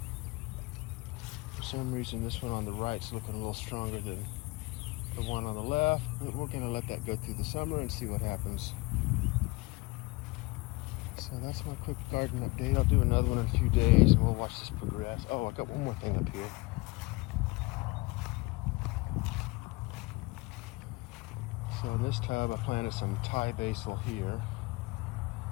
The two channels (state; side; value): quieter; right; 24.0 dB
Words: For some reason this one on the right's looking a little stronger than the one on the left, but we're gonna let that go through the summer and see what happens. So that's my quick garden update. I'll do another one in a few days and we'll watch this progress. Oh, I got one more thing up here. So in this tub I planted some Thai basil here.